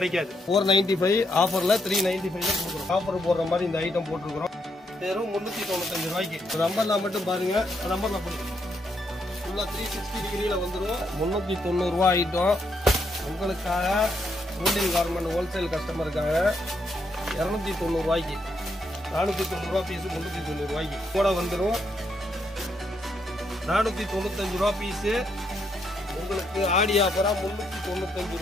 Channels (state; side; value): normal; both; correlation 0.77